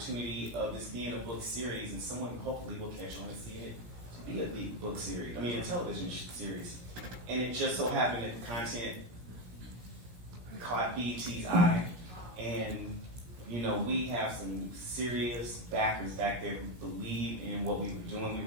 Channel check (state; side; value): late; left; 17 ms